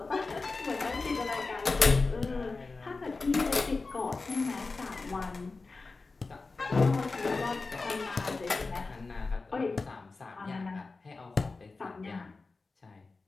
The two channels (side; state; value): right; quieter; 3.9 dB